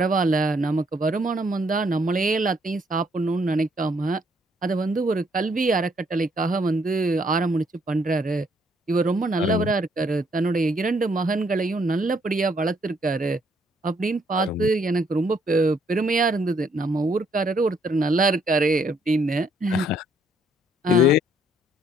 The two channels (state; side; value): normal; both; correlation 0.69